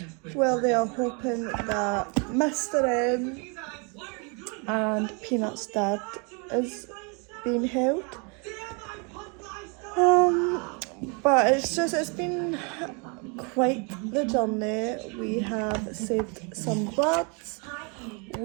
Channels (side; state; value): left; quieter; 34.1 dB